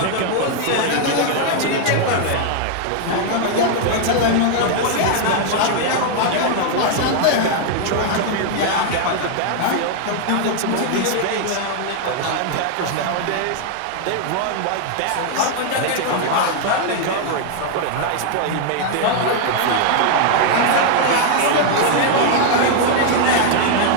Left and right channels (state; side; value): different; both; correlation 0.00